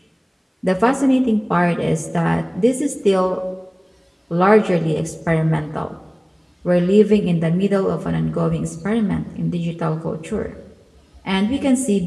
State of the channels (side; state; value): both; identical; correlation 1.00